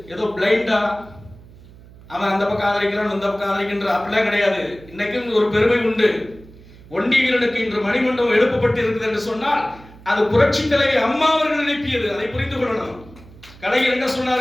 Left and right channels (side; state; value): right; noise; hum, 22 dB below the sound